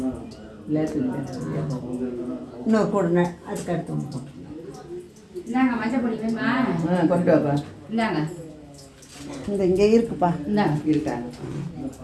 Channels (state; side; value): identical; both; correlation 1.00